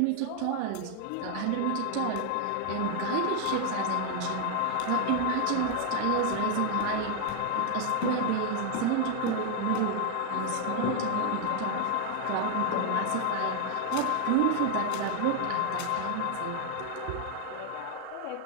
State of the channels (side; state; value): both; different; correlation 0.00